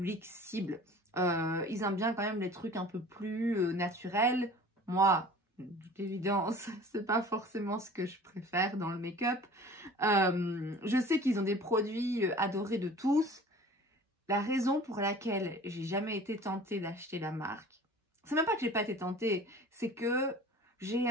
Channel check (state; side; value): normal; both; correlation 0.44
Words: cible. Ils aiment bien quand même les trucs un peu plus naturels. Moi, d'évidence, c'est pas forcément ce que je préfère dans le make-up. Je sais qu'ils ont des produits adorés de tous. La raison pour laquelle j'ai jamais été tentée d'acheter la marque, c'est même pas que j'ai pas été tentée, c'est que j'ai